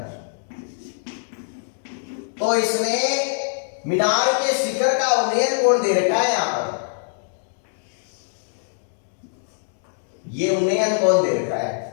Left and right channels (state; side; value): silent; right; digital silence